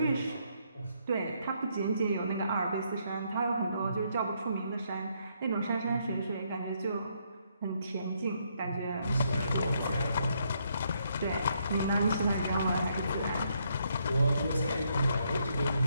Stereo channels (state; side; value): inverted; both; correlation -0.74